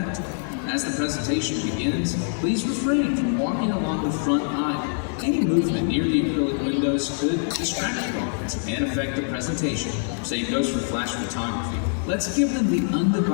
As the presentation begins, please refrain from walking along the front aisle. Any movement near the acrylic windows could distract the audience and affect the presentation. Same goes for flash photography. Let's give them the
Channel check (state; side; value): silent; right; digital silence